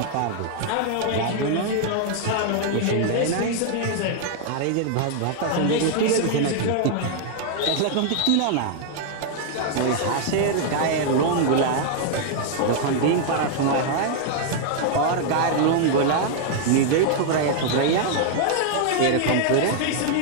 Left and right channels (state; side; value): different; both; correlation 0.00